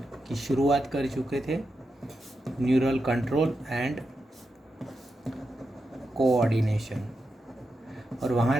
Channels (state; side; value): normal; both; correlation 0.88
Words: की शुरुआत कर चुके थे। न्यूरल कंट्रोल एंड कोऑर्डिनेशन, और वहाँ